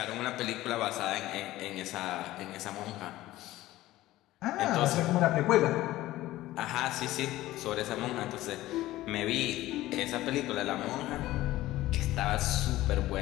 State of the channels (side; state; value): right; quieter; 16.2 dB